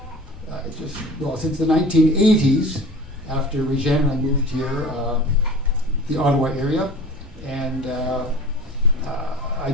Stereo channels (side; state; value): both; normal; correlation 0.40